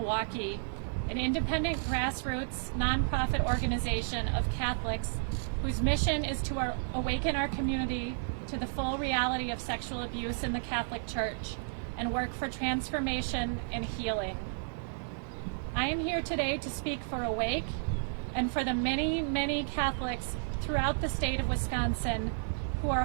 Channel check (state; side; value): silent; left; digital silence